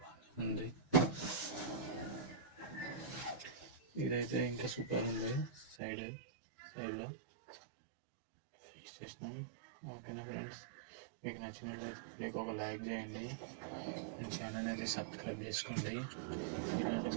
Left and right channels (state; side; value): drops out; left; at 5.8 s